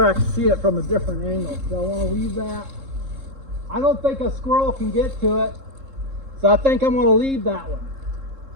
I can see it from a different angle. So I want to leave that. I don't think a squirrel can get to it, so I think I'm going to leave that one.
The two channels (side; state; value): left; late; 3.7 ms